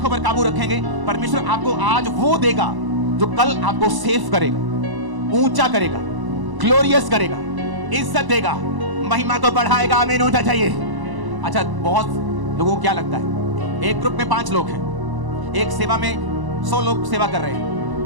पर काबू रखेंगे, परमेश्वर आपको आज वो देगा जो कल आपको सेव करेगा, ऊंचा करेगा, ग्लोरियस करेगा, इज्जत देगा, महिमा को बढ़ाएगा। आमीन होना चाहिए। अच्छा, बहुत लोगों को क्या लगता है, एक ग्रुप में 5 लोग हैं, एक सेवा में 100 लोग सेवा कर रहे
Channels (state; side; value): late; left; 1.0 ms